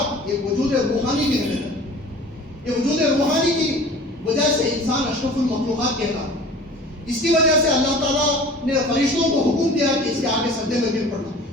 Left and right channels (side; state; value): both; normal; correlation 0.43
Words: ایک وجود روحانی بھی ہے۔ یہ وجود روحانی کی وجہ سے انسان اشرف المخلوقات کہتا ہے۔ اس کی وجہ سے اللہ تعالیٰ نے فرشتوں کو حکم دیا کہ اس کے آگے سجدے میں گر پڑنا۔